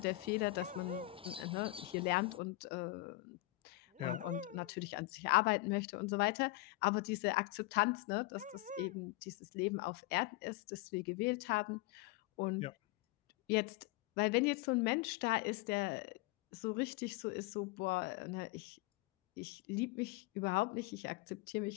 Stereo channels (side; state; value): right; quieter; 19.4 dB